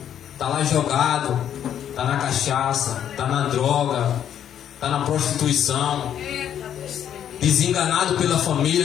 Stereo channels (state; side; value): quieter; right; 9.8 dB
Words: Está lá jogado, está na cachaça, está na droga, está na prostituição, desenganado pela